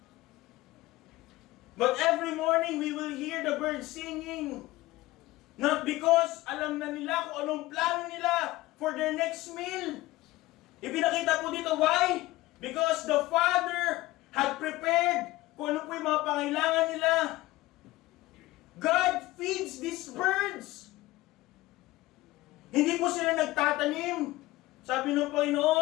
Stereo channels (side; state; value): right; quieter; 18.4 dB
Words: But every morning we will hear the birds singing. Not because alam na nila kung anong plano nila for their next meal. Ipinakita po dito, why? Because the Father had prepared kung ano po yung mga pangailangan nila. God feeds these birds. Hindi po sila nagtatanim. Sabi ng